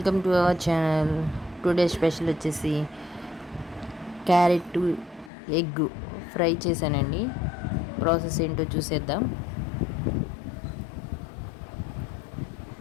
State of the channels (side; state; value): right; drops out; at 5.3 s